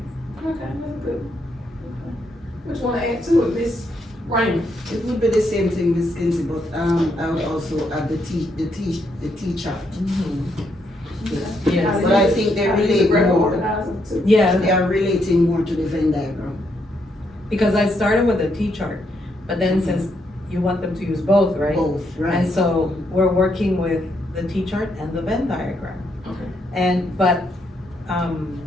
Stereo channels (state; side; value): normal; both; correlation 0.77